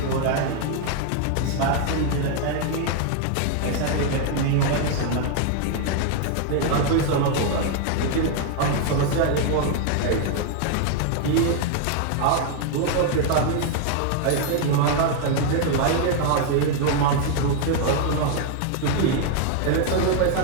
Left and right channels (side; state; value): both; different; correlation 0.00